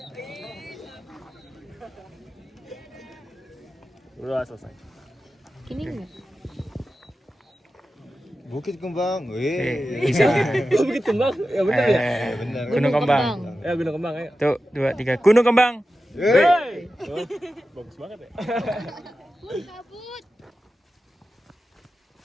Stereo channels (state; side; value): normal; both; correlation 0.92